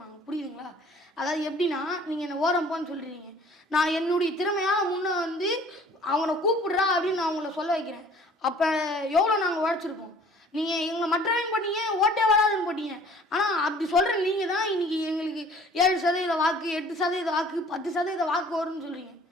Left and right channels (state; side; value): normal; both; correlation 0.52